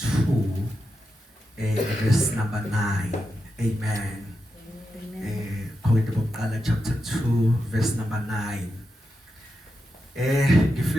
verse number 9. Amen. Korinte bokuqala chapter 2 verse number 9.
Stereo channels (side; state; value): both; normal; correlation 0.87